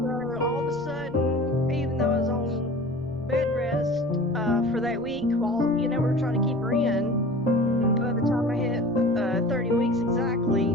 all of a sudden, even though I was on bed rest for that week, while we were trying to keep her in, by the time I hit 30 weeks exactly,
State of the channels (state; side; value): noise; left; rumble, 25 dB below the sound